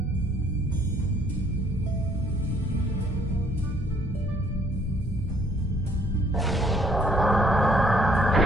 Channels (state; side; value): normal; both; correlation 0.63